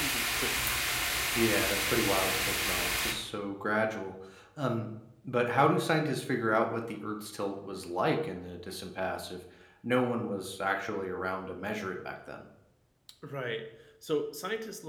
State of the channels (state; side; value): identical; both; correlation 1.00